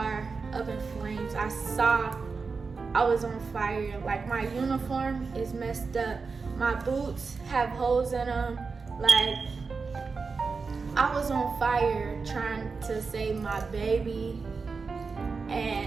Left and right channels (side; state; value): left; quieter; 4.7 dB